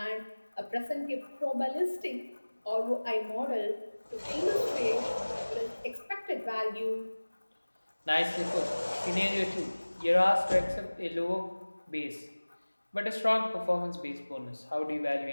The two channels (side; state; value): both; inverted; correlation -1.00